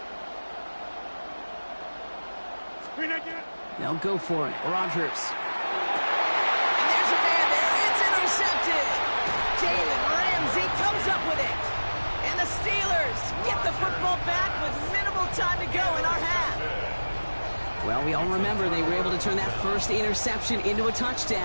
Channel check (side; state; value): both; inverted; correlation -1.00